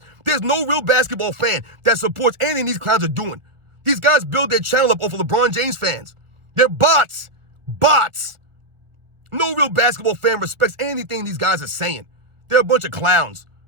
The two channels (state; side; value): late; left; 1.5 ms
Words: There's no real basketball fan that supports anything these clowns are doing. These guys build their channel up off of LeBron James fans. They're bots. Bots. No real basketball fan respects anything these guys are saying. They're a bunch of clowns.